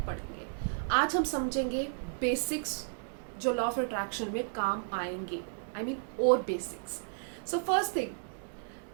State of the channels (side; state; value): left; silent; digital silence